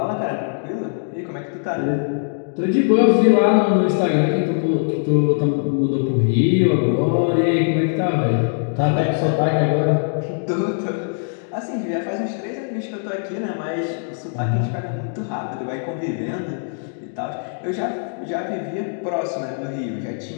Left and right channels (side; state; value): right; silent; digital silence